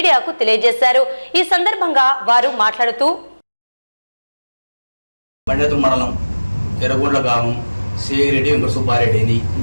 తెలియజేశారు. ఈ సందర్భంగా వారు మాట్లాడుతూ బండేతు మండలం ఎర్రగొండ్ల గ్రామం శ్రీరెడ్డి వెంకట సుబ్బారెడ్డిని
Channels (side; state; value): both; inverted; correlation -1.00